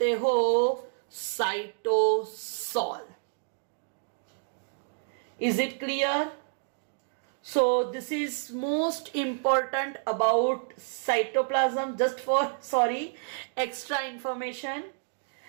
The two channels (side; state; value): left; silent; digital silence